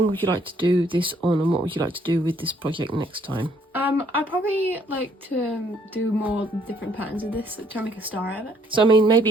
would you like to do this on, and what would you like to do with this project next time? I'd probably like to do more different patterns of this, try and make a star out of it. So I mean, maybe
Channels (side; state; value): both; normal; correlation 0.65